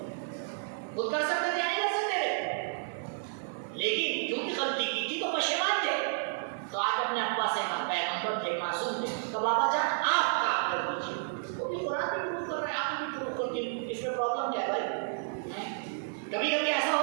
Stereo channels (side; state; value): left; silent; digital silence